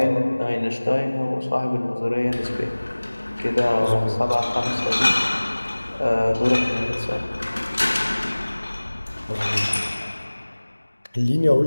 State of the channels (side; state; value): both; inverted; correlation -1.00